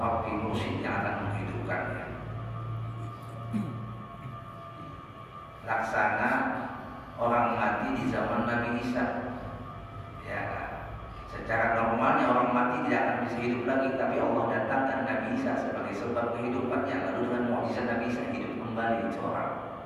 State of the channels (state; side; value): identical; both; correlation 1.00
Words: mursyid yang akan menghidupkannya. Laksana orang mati di zaman Nabi Isa. Ya, secara normalnya orang mati tidak akan bisa hidup lagi, tapi Allah datangkan Nabi Isa sebagai sebab kehidupannya. Lalu dengan mukjizat Nabi Isa hidup kembali itu orang.